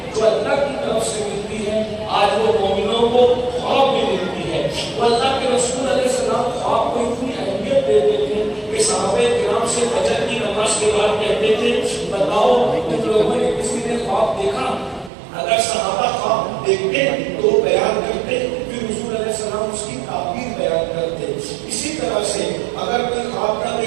جو اللہ کی طرف سے ملتی ہیں آج وہ مومنوں کو خواب میں ملتی ہے۔ وہ اللہ کے رسول علیہ السلام خواب کو اتنی اہمیت دیتے تھے کہ صحابہ کرام سے فجر کی نماز کے بعد کہتے تھے بتاؤ تم لوگوں نے کسی نے خواب دیکھا؟ اگر صحابہ خواب دیکھتے تو بیان کرتے، پھر حضور علیہ السلام اس کی تعبیر بیان کرتے۔ اسی طرح سے اگر کوئی خواب نہ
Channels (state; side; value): drops out; left; at 15.1 s